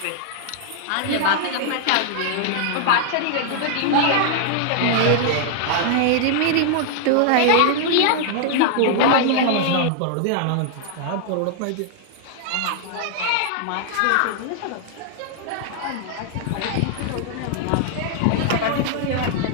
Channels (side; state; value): both; different; correlation 0.00